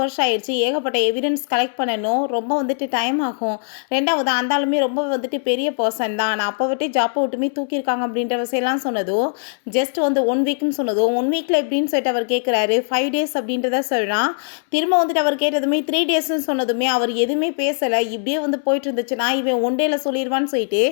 வருஷம் ஆயிடுச்சு, ஏகப்பட்ட எவிடன்ஸ் கலெக்ட் பண்ணணும், ரொம்ப வந்துட்டு டைம் ஆகும், 2வது அந்த ஆளுமே ரொம்ப வந்துட்டு பெரிய பர்சன் தான், நான் அப்போ விட்டு ஜாப்பை விட்டுமே தூக்கியிருக்காங்க அப்படின்ற விஷயம்லாம் சொன்னதும், ஜஸ்ட் வந்து 1 வீக்னு சொன்னதும் 1 வீக்கில் எப்படின்னு சொல்லிட்டு அவர் கேட்குறாரு, 5 டேஸ் அப்படின்றத சொல்கிறான். திரும்ப வந்துட்டு அவர் கேட்டதுமே 3 டேஸ்ன்னு சொன்னதுமே அவர் எதுவுமே பேசலை, இப்படியே வந்து போயிட்டு இருந்துச்சுன்னா இவன் 1 டேல சொல்லிடுவான்னு சொல்லிட்டு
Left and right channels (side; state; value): right; silent; digital silence